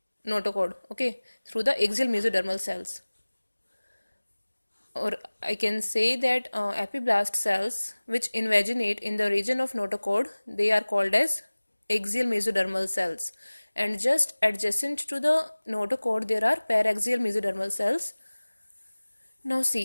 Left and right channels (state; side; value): inverted; both; correlation -1.00